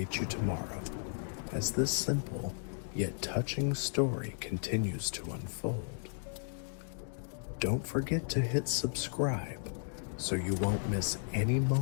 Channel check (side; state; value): right; silent; digital silence